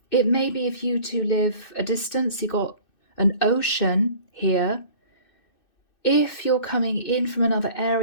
It may be if you two live a distance, you got an ocean here. If you're coming in from another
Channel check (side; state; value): right; late; 2.6 ms